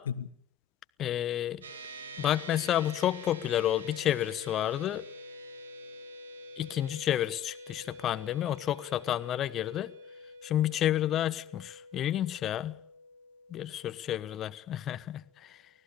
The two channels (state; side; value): quieter; right; 10.9 dB